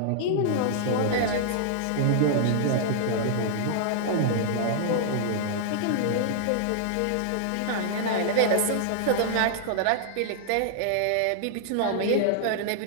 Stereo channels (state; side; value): different; both; correlation -0.01